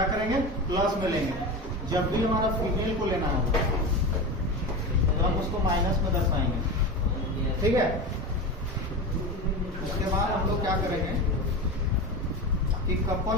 करेंगे? प्लस में लेंगे। जब भी हमारा फीमेल को लेना होगा तो हम उसको माइनस में दर्शाएंगे। ठीक है, उसके बाद हम लोग क्या करेंगे कि कपल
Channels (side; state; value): both; normal; correlation 0.25